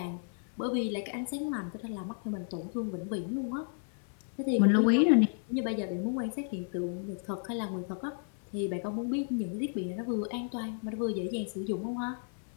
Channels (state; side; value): silent; right; 56 dB below the other